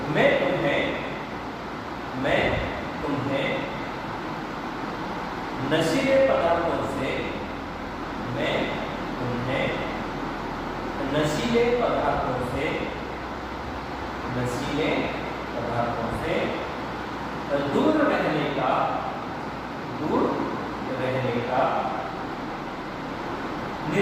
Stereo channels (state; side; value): identical; both; correlation 1.00